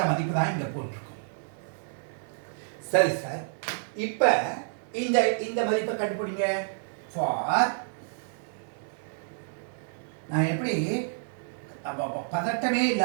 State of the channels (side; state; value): left; silent; digital silence